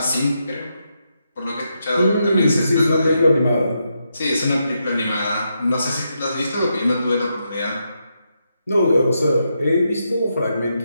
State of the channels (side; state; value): both; inverted; correlation -0.83